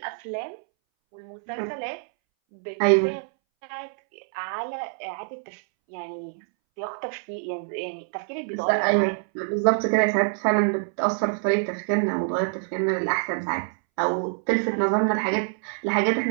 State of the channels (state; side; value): silent; left; 61 dB below the other